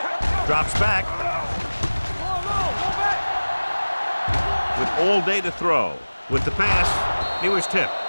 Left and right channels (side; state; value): both; inverted; correlation -1.00